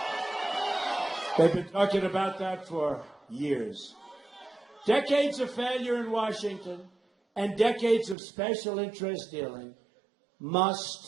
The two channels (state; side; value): drops out; left; at 8.2 s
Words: They've been talking about that for years. Decades of failure in Washington and decades of special interest dealing